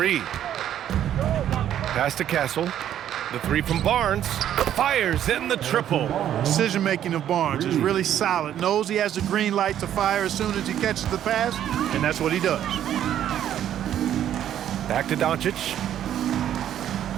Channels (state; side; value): quieter; left; 10.8 dB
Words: Pass to Castle. The 3 from Barnes. Fires in the triple. Decision-making of Barnes is really solid. Knows he has the green light to fire as soon as he catches the pass, and that's what he does. Back to Doncic.